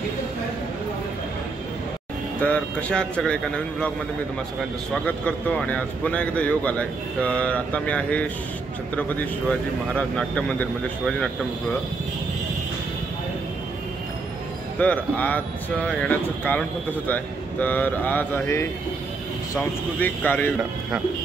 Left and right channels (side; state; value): left; quieter; 4.0 dB